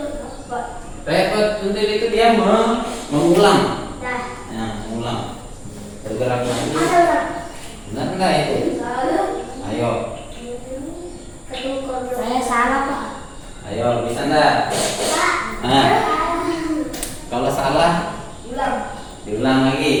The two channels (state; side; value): identical; both; correlation 1.00